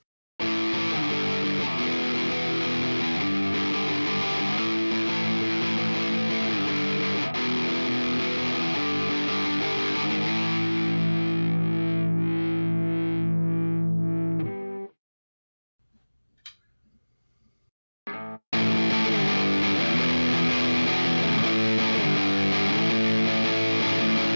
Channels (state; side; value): inverted; both; correlation -1.00